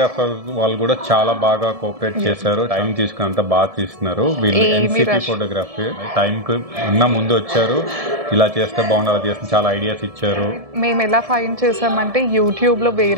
వాళ్ళు కూడా చాలా బాగా కోఆపరేట్ చేశారు. టైం తీసుకుని అంతా బాగా తీస్తున్నారు. వీళ్ళు ఎన్సిపి ఫోటోగ్రఫీ టైం కు ఉన్న ముందు వచ్చారు. ఇలా చేస్తే బాగుంది, అలా చేస్తే చాలా ఐడియాస్ ఇచ్చారు. మేము ఎలా ఫైండ్ చేసామంటే యూట్యూబ్ లో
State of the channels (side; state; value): left; late; 1.7 ms